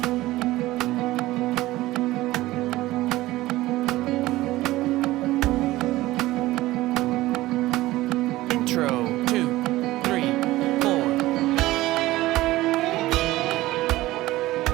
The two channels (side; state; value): left; quieter; 17.5 dB